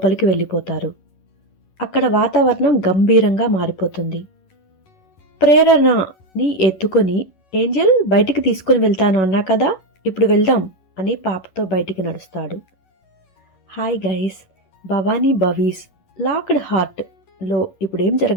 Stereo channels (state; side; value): late; right; 11 ms